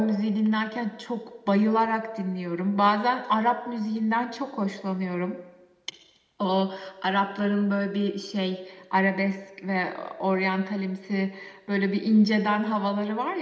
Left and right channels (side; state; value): both; identical; correlation 1.00